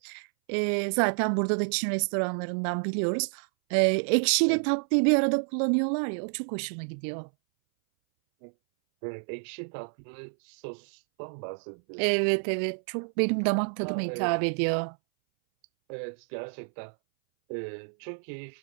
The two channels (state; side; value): silent; left; 59 dB below the other